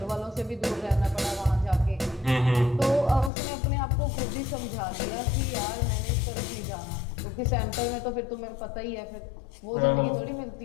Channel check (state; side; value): drops out; right; at 3.3 s